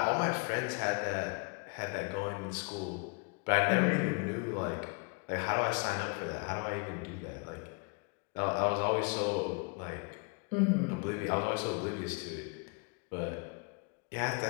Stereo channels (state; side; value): quieter; right; 33.2 dB